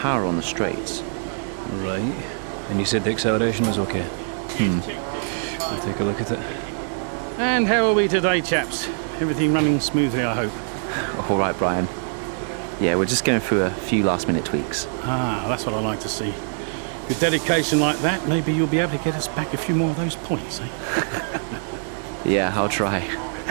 on the straights. Right. And you said the acceleration was okay? We'll take a look at it. And how are we today, chaps? Everything running smoothly, I hope. All right, Brian. Yeah, we're just going through a few last-minute tweaks. Ah, that's what I like to see. With dedication like that, maybe you'll be able to get us back a few more of those points, eh? Yeah, I'll try.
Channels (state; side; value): silent; left; 63 dB below the other